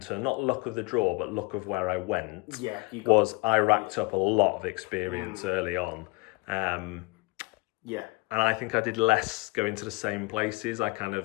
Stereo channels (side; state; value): right; quieter; 25.6 dB